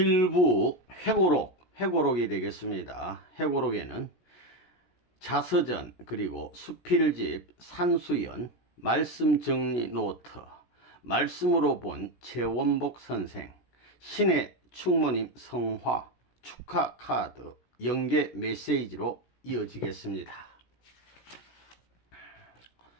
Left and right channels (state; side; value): late; right; 16 ms